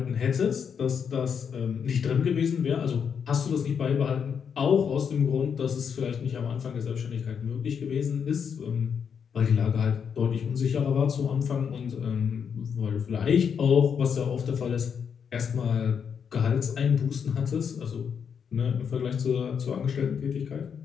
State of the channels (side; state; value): right; quieter; 7.1 dB